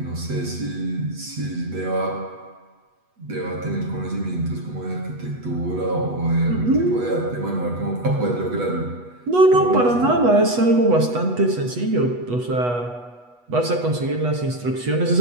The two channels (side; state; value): left; late; 8.2 ms